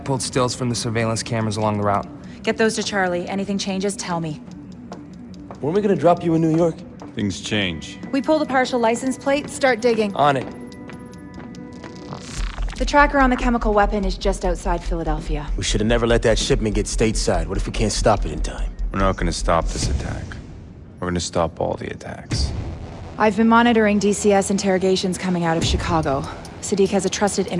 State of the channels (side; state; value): both; identical; correlation 1.00